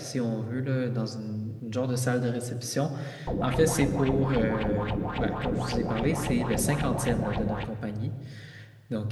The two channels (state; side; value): identical; both; correlation 1.00